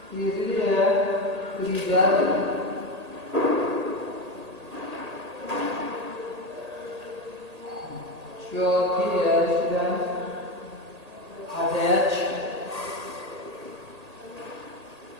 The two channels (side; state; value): left; late; 1.8 ms